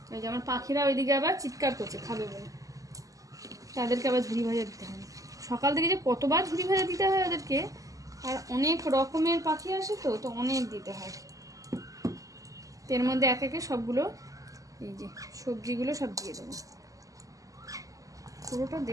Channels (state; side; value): late; left; 0.17 ms